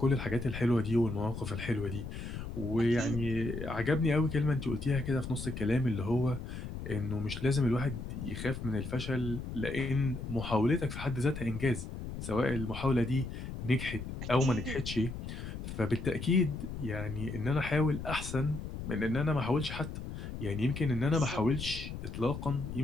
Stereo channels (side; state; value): left; noise; rumble, 7 dB below the sound